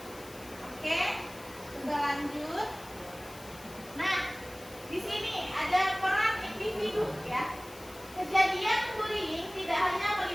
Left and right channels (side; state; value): left; noise; hiss, 19 dB below the sound